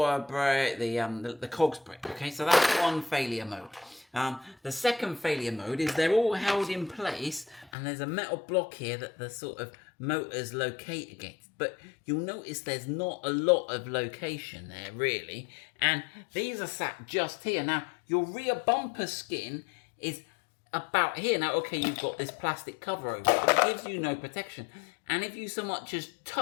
break, the cogs break. Okay, so that's one failure mode. The second failure mode is they're all held in place, and there's a metal block here that the sort of motors locate against. But you'll notice there's not a lot of location there, really. And these are sat just here. Now, your rear bumper skin is about here. Now, okay, you've got this plastic cover over it, but it gives you no protection. And if you so much as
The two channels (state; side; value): drops out; right; at 7.7 s